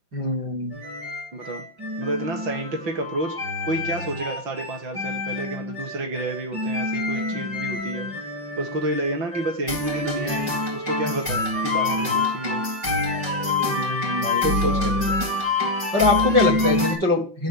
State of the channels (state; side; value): late; left; 5.7 ms